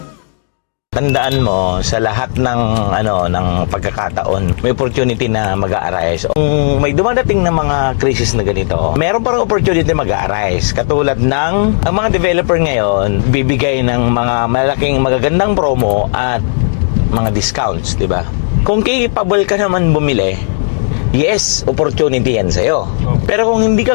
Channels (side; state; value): right; silent; digital silence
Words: Tandaan mo, sa lahat ng pagkakataon, may opportunity na mag-a-arise. Kung may dumadating na mga crisis na ganito, meron parang opportunity mag-a-arise. Katulad ng ang mga developer ngayon, bibigay ng mga malaking magagandang promo at mga discounts, di ba? Kung capable ka naman bumili, yes, opportunity yan sa'yo. Pero kung hindi ka